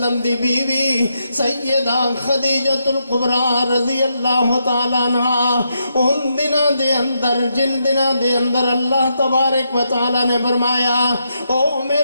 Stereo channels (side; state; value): both; inverted; correlation -0.81